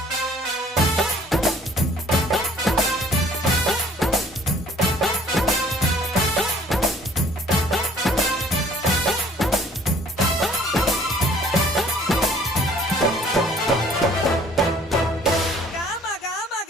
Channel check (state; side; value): normal; both; correlation 0.56